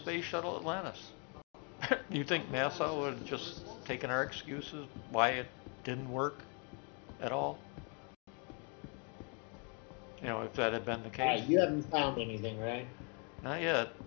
Shuttle Atlantis. You think NASA would have just taken our excuses why it didn't work at all? You know, if that had been the All case. right, you haven't found anything, right? Not yet.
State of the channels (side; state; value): right; quieter; 37.2 dB